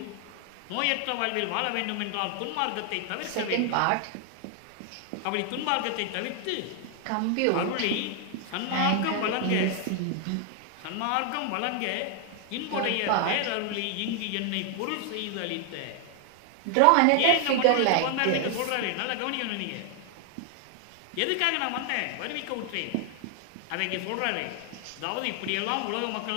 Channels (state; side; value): different; both; correlation 0.00